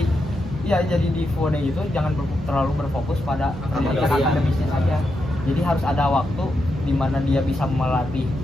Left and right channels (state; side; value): normal; both; correlation 0.85